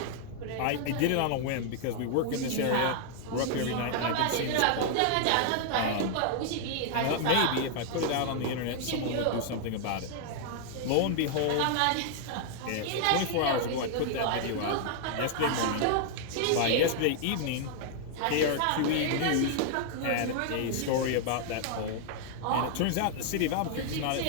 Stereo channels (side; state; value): both; different; correlation 0.00